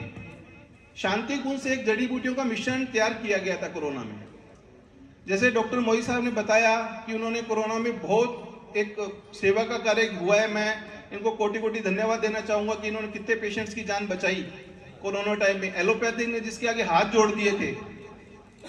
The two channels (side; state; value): both; identical; correlation 1.00